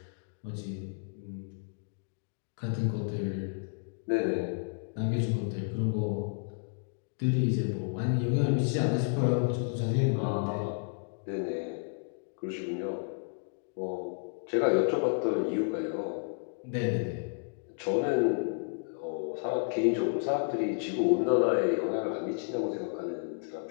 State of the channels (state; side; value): silent; right; digital silence